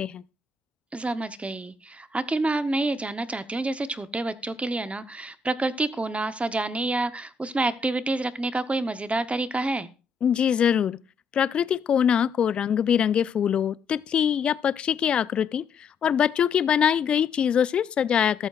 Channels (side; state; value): right; quieter; 4.5 dB